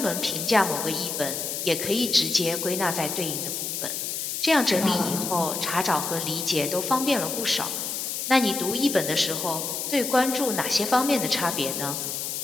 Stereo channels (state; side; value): noise; left; hiss, 3 dB below the sound